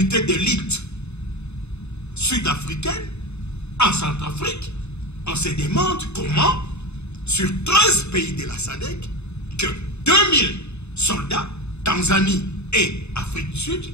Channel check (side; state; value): right; late; 0.81 ms